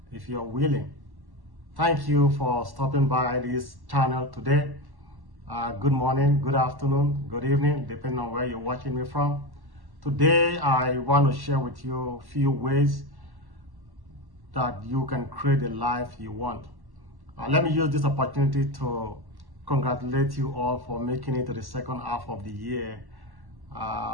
if you're willing. Thank you for stopping by this channel today. Good morning, good afternoon, good evening, depending on where you're watching me from. Today, I want to share with you a few ways that you can create the life you want. Let me use this opportunity to congratulate you all for making it to the second half of the year.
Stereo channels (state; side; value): late; left; 1.1 ms